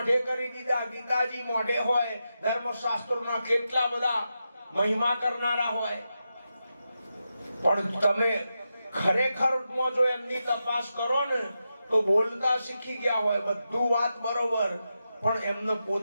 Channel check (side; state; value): both; inverted; correlation -0.88